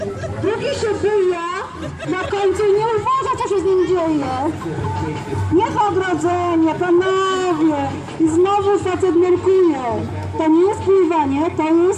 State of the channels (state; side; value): identical; both; correlation 1.00